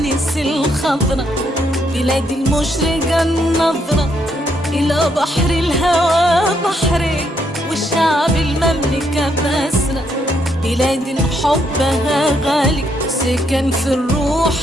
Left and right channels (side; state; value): both; normal; correlation 0.75